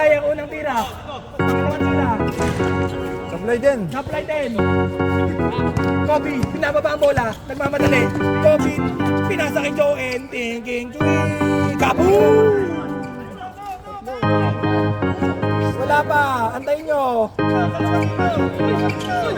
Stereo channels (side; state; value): both; identical; correlation 1.00